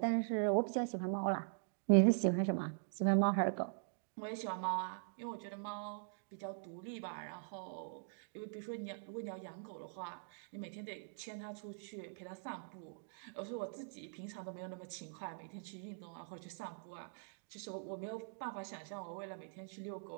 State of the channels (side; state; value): left; silent; digital silence